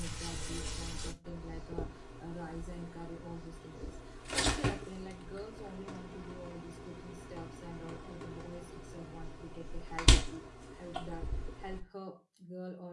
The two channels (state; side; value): identical; both; correlation 1.00